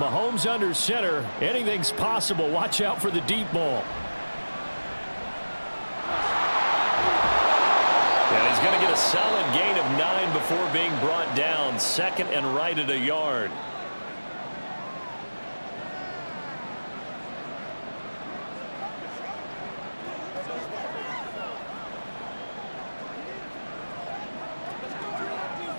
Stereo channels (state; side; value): inverted; both; correlation -1.00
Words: under center, anything's possible. Watch out for the deep ball. And he's going to get a solid gain of 9 before being brought down. 2nd and right at a yard.